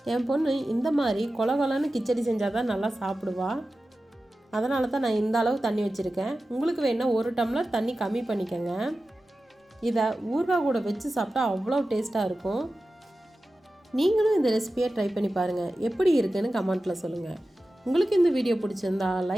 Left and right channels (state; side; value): normal; both; correlation 0.94